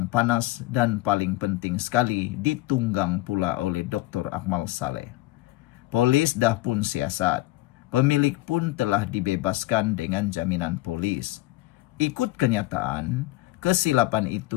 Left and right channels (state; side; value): quieter; right; 18.8 dB